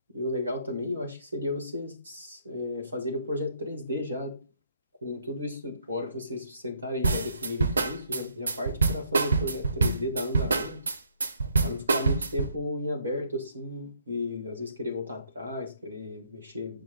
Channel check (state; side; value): inverted; both; correlation -0.67